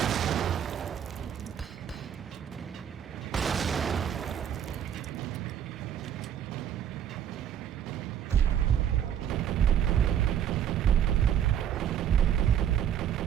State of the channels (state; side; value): quieter; left; 9.4 dB